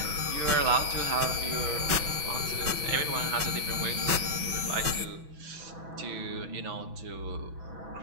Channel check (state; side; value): late; left; 6.1 ms